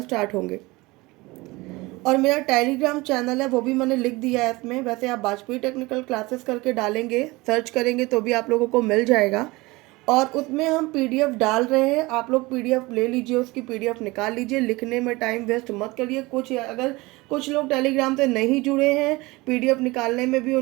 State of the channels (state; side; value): quieter; left; 22.2 dB